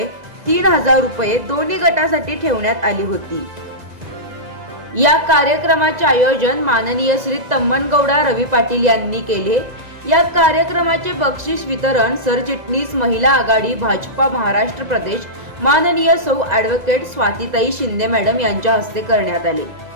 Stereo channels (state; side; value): late; left; 2.0 ms